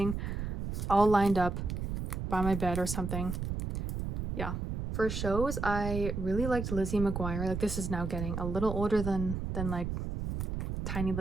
all lined up by my bed or something. Yeah. For shows, I really liked Lizzie McGuire. Like, this is now getting a little older than like tiny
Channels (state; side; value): noise; right; rumble, 4 dB below the sound